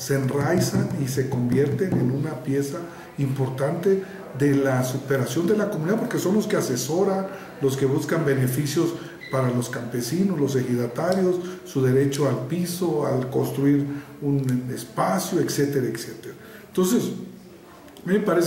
enraizan y se convierten en una pieza importante de la superación de la comunidad, porque son los que asesoran, los que buscan beneficios para los campesinos, los ejidatarios, su derecho al piso, al construir un espacio, etcétera, etcétera. Entonces, a mí me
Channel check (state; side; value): identical; both; correlation 1.00